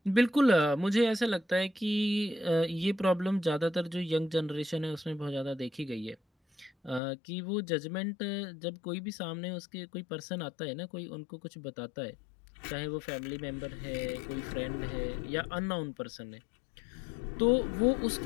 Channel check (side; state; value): right; drops out; at 7.0 s